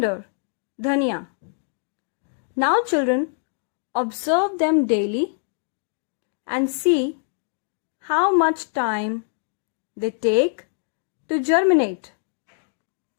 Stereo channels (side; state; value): right; silent; digital silence